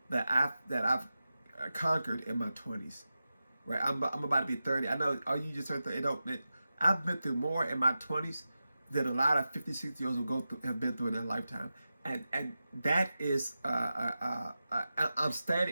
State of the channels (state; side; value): inverted; both; correlation -0.93